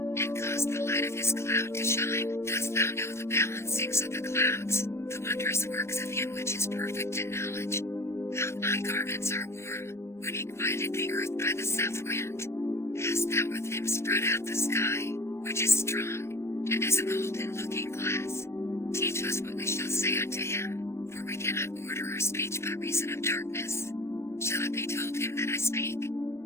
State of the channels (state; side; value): late; right; 0.13 ms